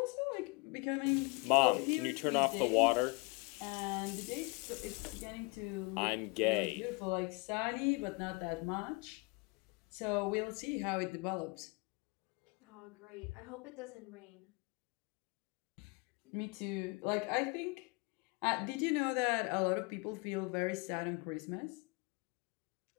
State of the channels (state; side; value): quieter; right; 29.1 dB